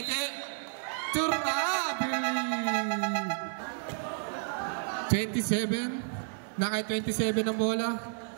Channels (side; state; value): left; silent; digital silence